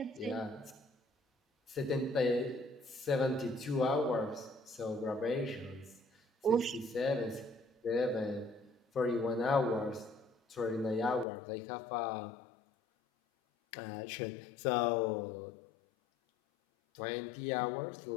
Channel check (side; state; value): right; drops out; at 11.2 s